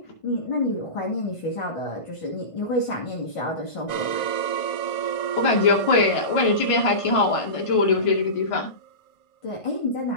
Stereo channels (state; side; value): late; right; 1.5 ms